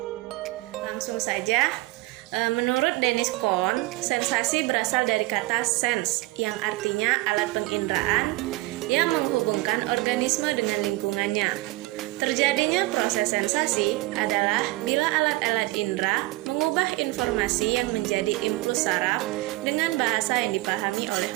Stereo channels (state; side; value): quieter; left; 20.4 dB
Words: Langsung saja. Menurut Dennis Kohn, sensasi berasal dari kata sense yang artinya alat penginderaan yang menghubungkan organisme dengan lingkungannya. Terjadinya proses sensasi adalah bila alat-alat indera mengubah informasi yang menjadi impuls saraf dengan bahasa yang dipahami oleh